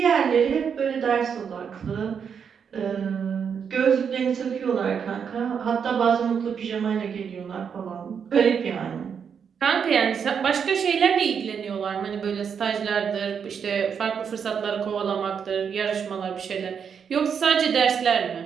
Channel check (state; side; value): quieter; left; 7.0 dB